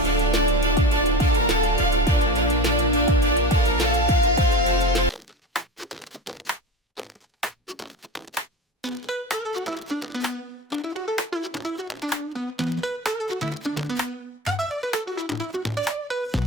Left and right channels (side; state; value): both; normal; correlation 0.31